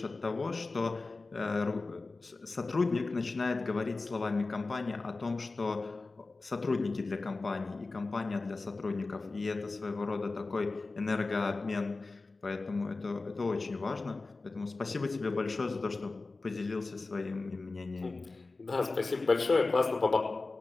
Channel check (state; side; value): quieter; right; 3.6 dB